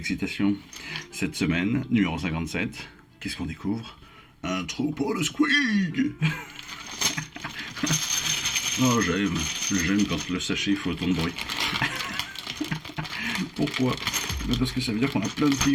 Cette semaine, numéro 57, qu'est-ce qu'on découvre? Un troupeau de squig. Oh, j'aime quand le sachet fait autant de bruit. Pourquoi? Parce que ça veut dire qu'on a plein de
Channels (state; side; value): identical; both; correlation 1.00